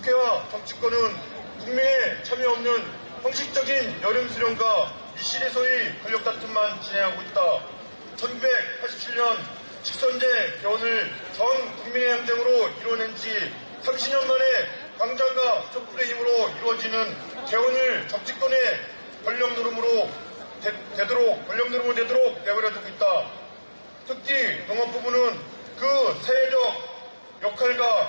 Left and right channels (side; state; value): both; inverted; correlation -1.00